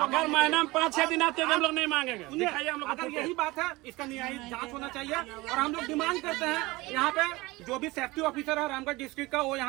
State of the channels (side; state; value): left; quieter; 21.4 dB